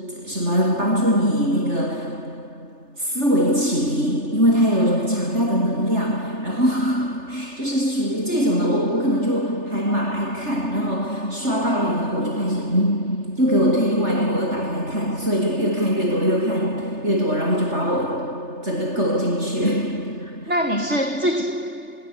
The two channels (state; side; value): late; left; 3.3 ms